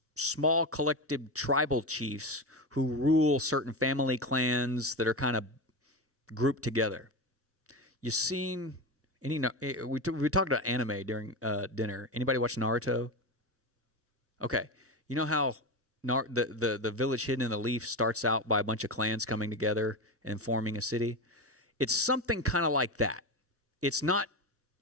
small collective tribal chiefs who rule certain family clans that are kind of grouped together. You seen any? We talked about anime during dinner. Anybody watch Naruto? Okay, you know how the village hidden in the leaf starts out by a bunch of clans coming together and forming a city? It's something kind of like that. It's not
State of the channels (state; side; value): normal; both; correlation 0.19